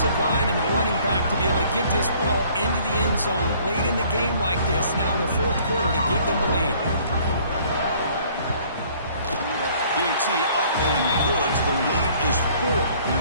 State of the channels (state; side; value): inverted; both; correlation -0.57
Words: line and the running back to be able to get this ball into the end zone late in the game like this, now in the 4th quarter to give them the lead. PAT up and good. The lead is 4 here